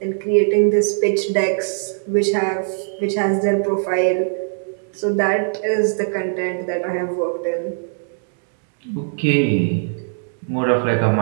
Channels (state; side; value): silent; left; digital silence